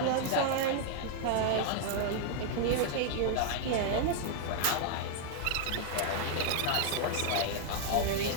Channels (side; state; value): both; different; correlation 0.00